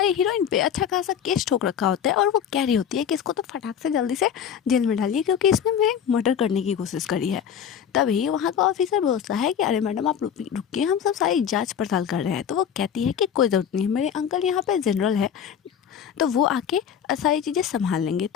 हीरोइन पे अच्छा खासा केस ठोक रखा होता है और वो कह रही होती है कि इसको तो फटाक से जल्दी से जेल में डालिए क्योंकि इसने मेरे मर्डर करने की कोशिश करी है। तभी वहाँ का ऑफिसर बोलता है कि अरे मैडम आप रुकिए, हम सब सारी जांच पड़ताल कर रहे हैं। तो वो कहती है कि कोई ज़रूरत नहीं है, मेरे अंकल यहाँ पे जनरल है तो वो आके सारी चीज़ें संभाल लेंगे।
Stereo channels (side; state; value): right; quieter; 8.4 dB